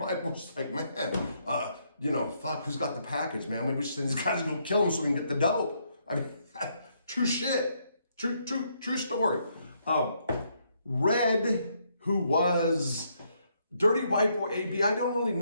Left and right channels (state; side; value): inverted; both; correlation -0.74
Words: Boys like, man, fuck, who's got the package, man? Maybe we should send these guys to go kill them so we can get the dope. I mean, true shit. True story. Red, who was Dirty White Boy AB, I don't really